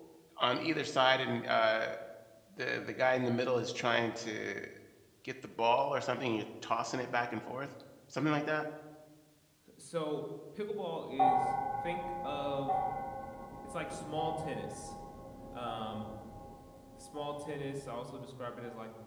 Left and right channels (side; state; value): both; identical; correlation 1.00